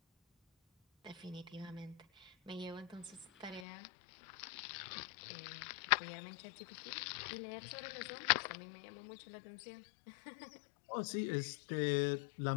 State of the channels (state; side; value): drops out; right; at 3.7 s